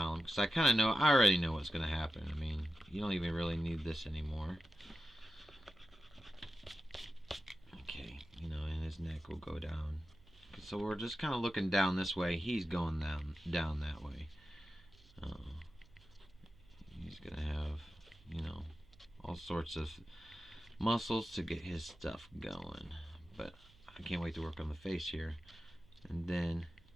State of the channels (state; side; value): noise; right; hum, 26 dB below the sound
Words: because I already know what's going to happen. I mean, you don't even really need this anymore. Okay, and his neck will go down. So we're just kind of looking down this way. He's going down that way. He's going to have, all sorts of muscles to get his stuff going. But I can't wait to work on the face here. And then,